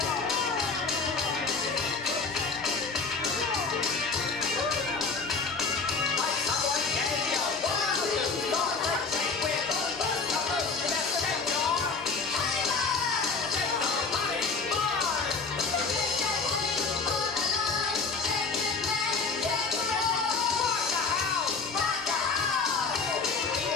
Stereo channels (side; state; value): right; quieter; 4.6 dB